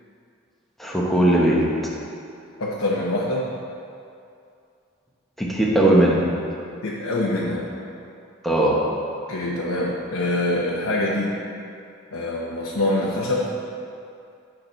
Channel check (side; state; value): both; normal; correlation 0.42